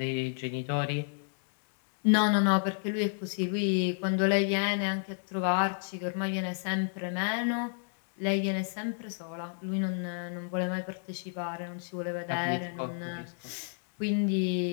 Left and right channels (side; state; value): right; silent; digital silence